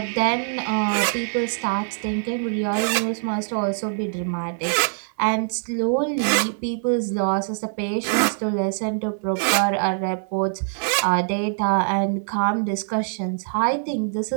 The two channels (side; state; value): left; silent; digital silence